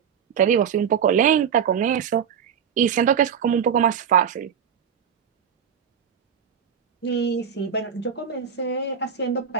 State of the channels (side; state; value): left; quieter; 7.8 dB